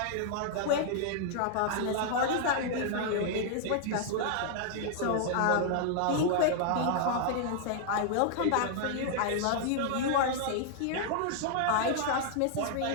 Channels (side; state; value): both; different; correlation -0.01